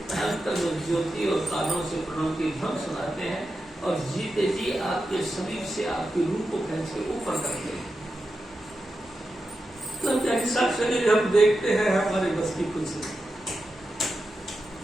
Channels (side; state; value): left; noise; hum, 29 dB below the sound